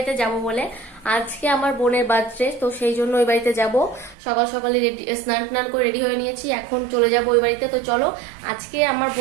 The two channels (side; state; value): left; drops out; at 4.2 s